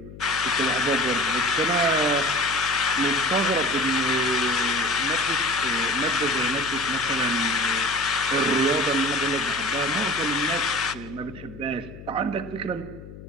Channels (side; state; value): left; noise; hum, 16 dB below the sound